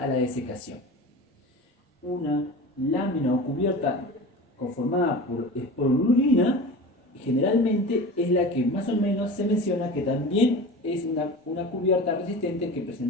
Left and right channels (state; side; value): normal; both; correlation 0.33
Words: la desecación. Una lámina o cubierta conformada por esporulina generalmente es la que más o menos se menciona que también es una cubierta resistente que